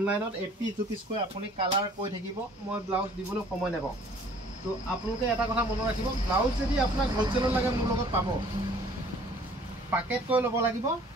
এপিস দুপিস কৈ আপুনি কালাৰ কৈ থাকিব মই ব্লাউজ দিবলৈ সময় নেপাও তো আপোনালোকে এটা কথা মন ৰাখিব ব্লাউজ যদি আপোনাক হ'লসেলত লাগে মোৰ লগত পাব পাকেট কৰি ল'ব লাগিব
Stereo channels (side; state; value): both; normal; correlation 0.54